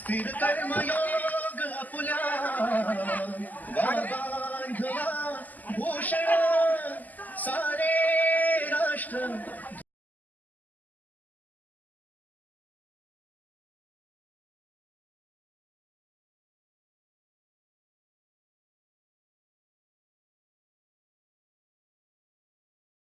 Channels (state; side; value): late; right; 0.082 ms